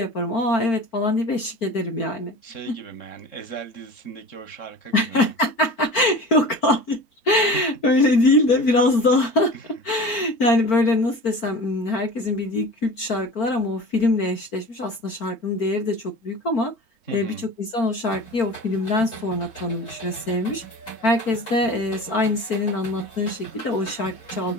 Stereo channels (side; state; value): right; late; 4.4 ms